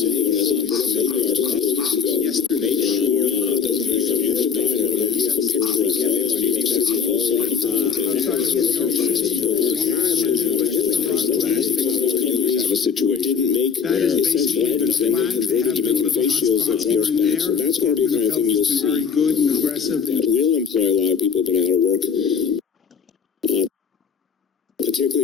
city. When I was maybe a couple of weeks ago, make sure that when they come here to buy a beautiful picture of all New York City also. A situation didn't make their essential items, then they converted to making face shields that force back. So that's going to be the kind of thing you'll see that will employ a lot of people who've been out of work,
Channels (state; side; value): quieter; right; 6.6 dB